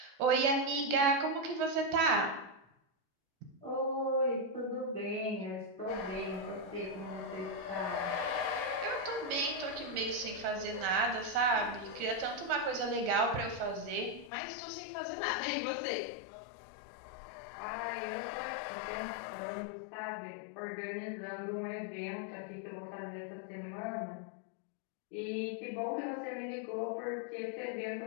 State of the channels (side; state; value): right; drops out; at 14.3 s